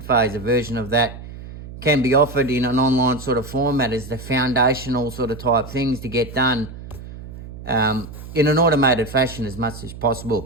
phase, a version of that, can be offered in an online sort of format as the foundational sort of type things to get done in an automated fashion as much as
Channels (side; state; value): right; noise; hum, 13 dB below the sound